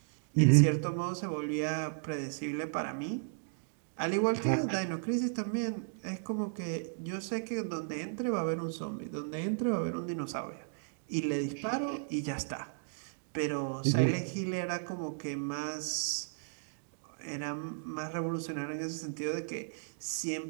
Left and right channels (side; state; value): left; silent; digital silence